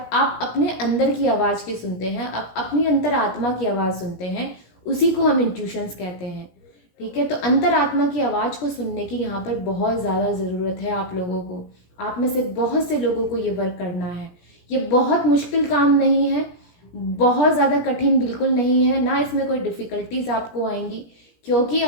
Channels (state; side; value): late; right; 17 ms